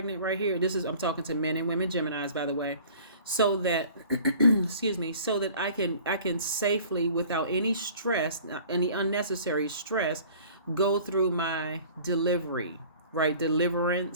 right here. I'm talking to men and women, Geminis, by the way. So that excuse me, so that I can safely, without any stress, any unnecessary stress, go through my delivery, right?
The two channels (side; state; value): both; inverted; correlation -0.48